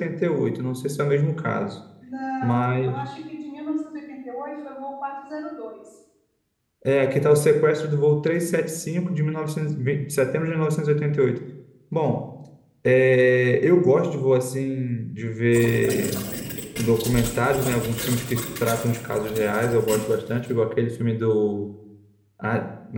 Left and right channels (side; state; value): both; identical; correlation 1.00